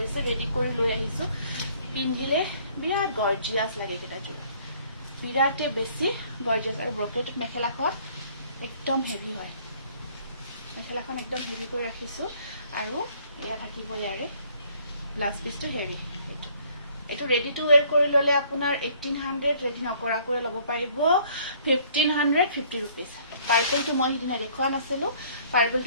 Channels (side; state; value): both; inverted; correlation -0.59